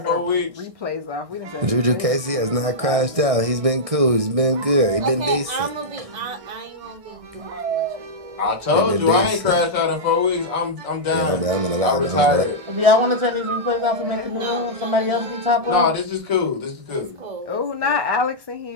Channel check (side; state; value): left; late; 1.6 ms